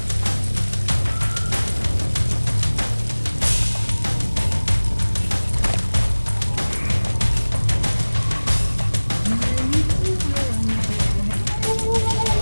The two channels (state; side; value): inverted; both; correlation -1.00